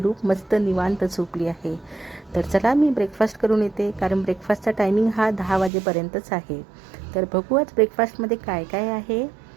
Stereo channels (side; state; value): left; drops out; at 5.7 s